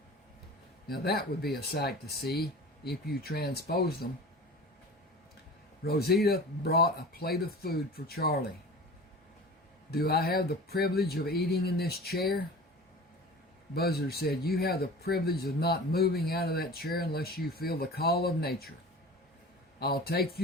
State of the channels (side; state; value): both; normal; correlation 0.37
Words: Now that would be a sight to see if you transpose them. Rosita brought a plate of food for Charlie. Do I have the privilege of eating in this chair? Buzzard said, you have the privilege of not moving out of that chair unless you feel the call of nature. I'll take